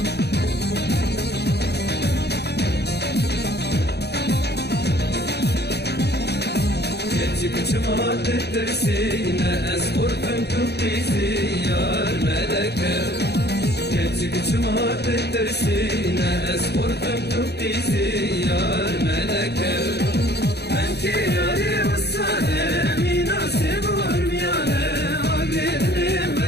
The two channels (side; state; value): right; late; 0.48 ms